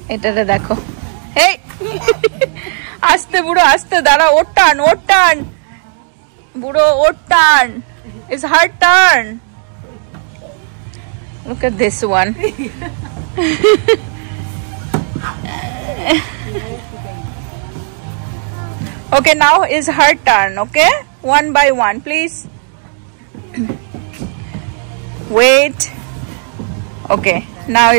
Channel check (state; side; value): silent; left; 59 dB below the other